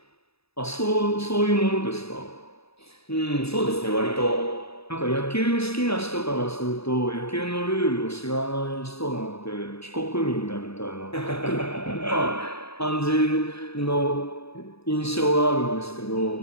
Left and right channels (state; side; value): late; right; 0.78 ms